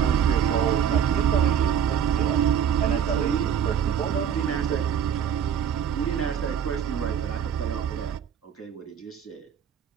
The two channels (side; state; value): left; quieter; 8.5 dB